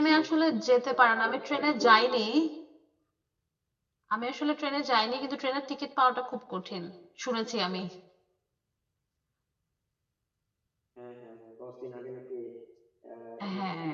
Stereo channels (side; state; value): both; identical; correlation 1.00